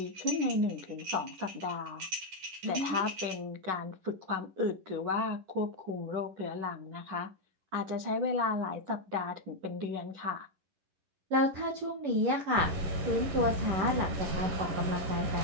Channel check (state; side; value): late; left; 11 ms